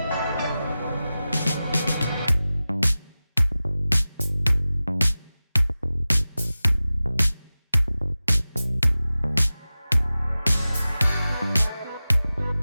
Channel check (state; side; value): inverted; both; correlation -0.96